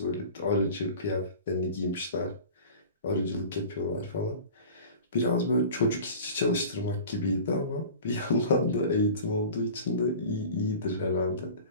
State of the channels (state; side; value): inverted; both; correlation -0.39